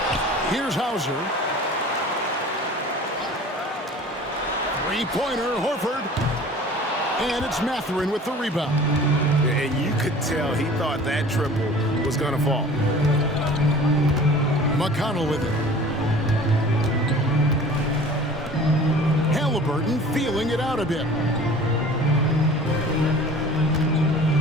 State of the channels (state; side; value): normal; both; correlation 0.44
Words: Here's Hauser. Three-pointer, Horford. And it's Mathurin with the rebound. And you could tell he thought that triple was going to fall. McConnell with it. Halliburton feeling it out a bit.